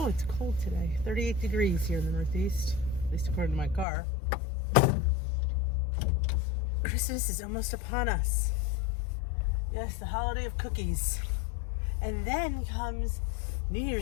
it's cold today. 38 degrees here in the Northeast, at least according to my car. Christmas is almost upon us. Yes, the holiday of cookies. And then comes New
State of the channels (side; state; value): right; drops out; at 3.9 s